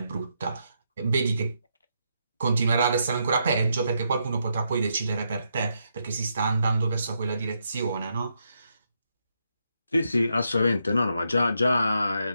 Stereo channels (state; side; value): inverted; both; correlation -0.80